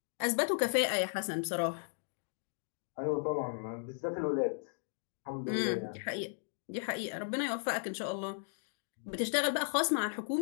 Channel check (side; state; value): right; silent; digital silence